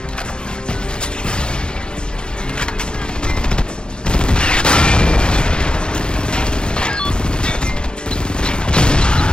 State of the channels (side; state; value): right; late; 0.049 ms